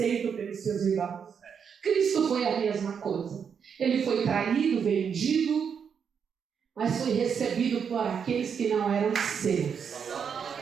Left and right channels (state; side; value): quieter; left; 7.0 dB